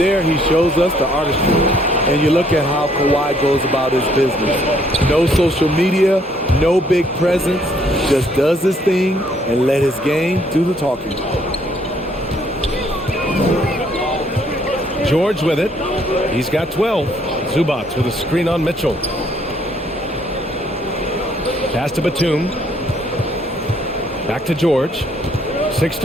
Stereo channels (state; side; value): normal; both; correlation 0.66